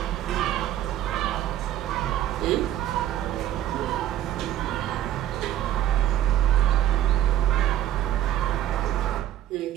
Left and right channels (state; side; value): quieter; left; 12.1 dB